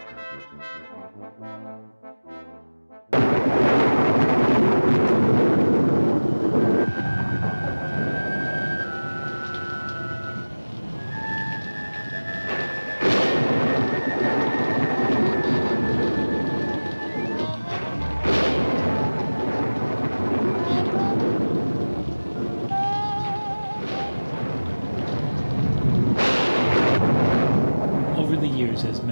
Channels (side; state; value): both; inverted; correlation -1.00